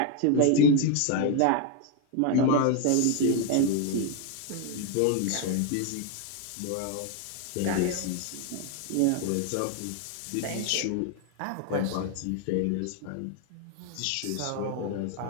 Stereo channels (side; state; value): both; different; correlation 0.01